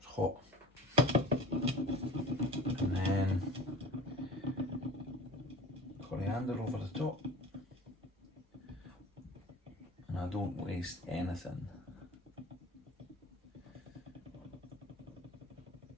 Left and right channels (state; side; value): normal; both; correlation 0.40